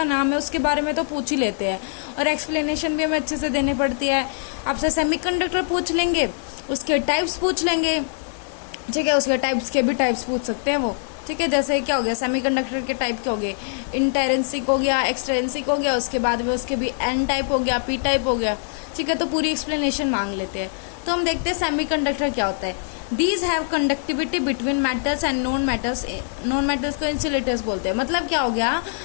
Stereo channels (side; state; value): right; silent; 56 dB below the other